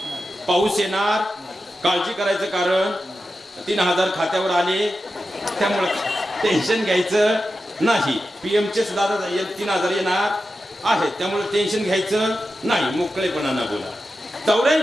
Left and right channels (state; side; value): normal; both; correlation 0.91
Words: पाऊस येणार, काळजी करायचं कारण 3000 खात्यावर आले त्यामुळे टेन्शन घ्यायचं नाही. PM चे सुद्धा 3000 येणार आहेत त्यामुळे टेन्शन घ्यायचं नाही. मोकळेपणानं बोला.